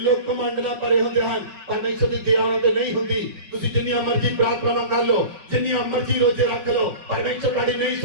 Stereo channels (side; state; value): left; late; 5.2 ms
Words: ਕਮਾਂਡ ਨਾਲ ਭਰੇ ਹੁੰਦੇ ਹਨ, ਪਰਮੇਸ਼ਵਰ ਦੀ ਦਇਆ ਉਹਨਾਂ ਤੇ ਨਹੀਂ ਹੁੰਦੀ। ਤੁਸੀਂ ਜਿੰਨੀਆਂ ਮਰਜ਼ੀ ਪ੍ਰਾਰਥਨਾਵਾਂ ਕਰ ਲਓ, ਜਿੰਨੀਆਂ ਮਰਜ਼ੀ ਰੋਜ਼ੇ ਰੱਖ ਲਓ, ਪਰਮੇਸ਼ਵਰ ਤੁਹਾਡੀ ਨਹੀਂ